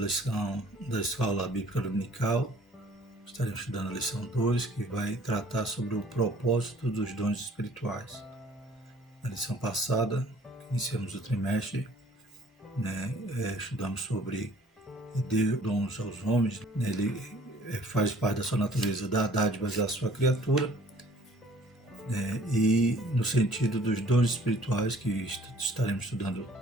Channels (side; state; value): both; normal; correlation 0.55